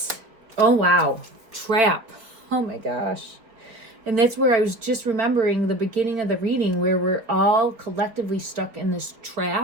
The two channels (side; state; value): left; late; 4.4 ms